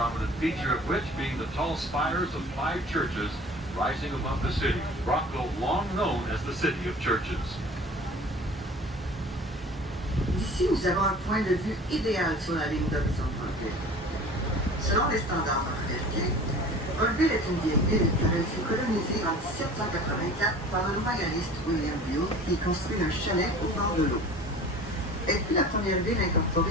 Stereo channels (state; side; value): normal; both; correlation 0.43